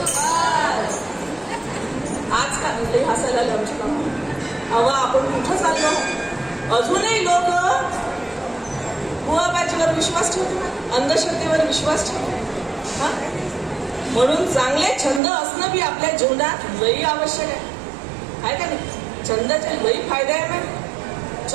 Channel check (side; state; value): left; drops out; at 15.2 s